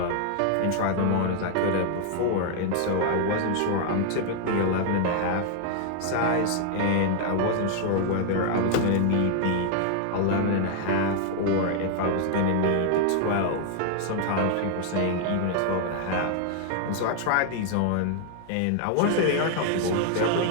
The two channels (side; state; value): both; different; correlation 0.00